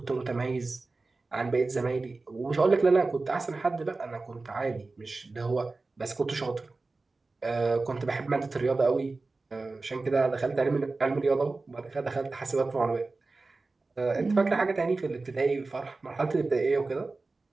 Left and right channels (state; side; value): quieter; left; 3.6 dB